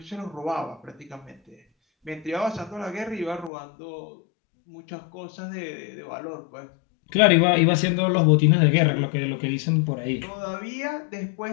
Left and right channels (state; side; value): drops out; right; at 3.5 s